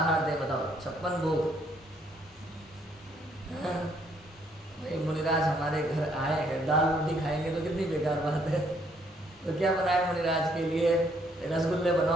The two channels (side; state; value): both; normal; correlation 0.68